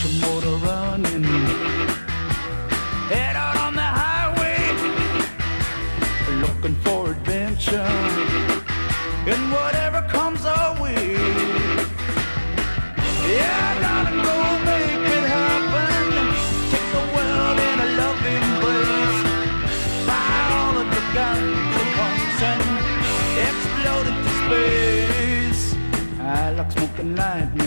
your motor running. Head out on the highway, looking for adventure. And whatever comes our way, yeah, darling, go make it happen. Take the world in a loving embrace. Fire all of the guns at once and explode into space. I like smoking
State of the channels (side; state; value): both; inverted; correlation -1.00